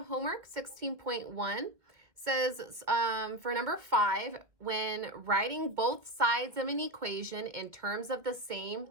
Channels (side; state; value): left; late; 2.2 ms